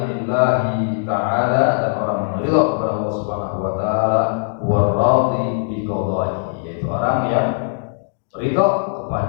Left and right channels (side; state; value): right; silent; digital silence